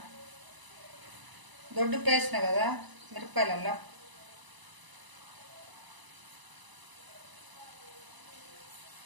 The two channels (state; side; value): late; left; 1.0 ms